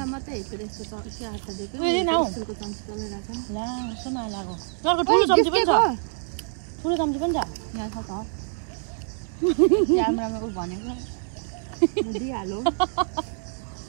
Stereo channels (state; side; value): silent; left; digital silence